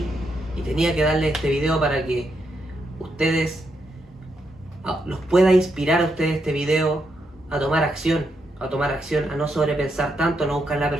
y tenía que darle este video para que ustedes los pueda inspirar a ustedes este video a tomar acción, a no sobrepensar tanto, a no buscar la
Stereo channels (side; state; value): both; normal; correlation 0.81